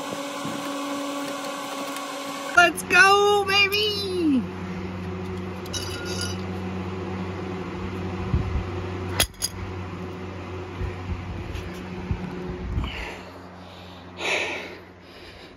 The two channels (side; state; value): both; identical; correlation 1.00